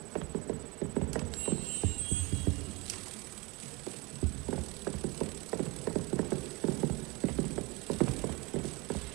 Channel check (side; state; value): left; quieter; 26.4 dB